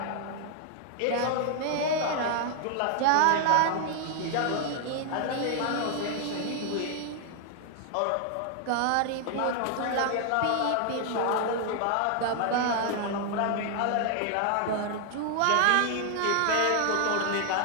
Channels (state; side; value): different; both; correlation 0.00